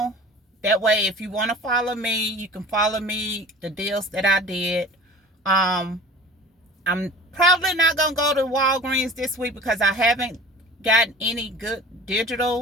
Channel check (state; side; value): normal; both; correlation 0.40